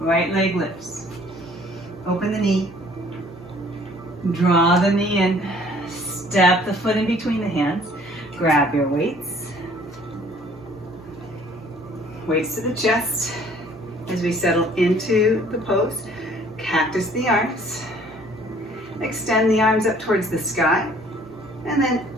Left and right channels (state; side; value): noise; right; hum, 22 dB below the sound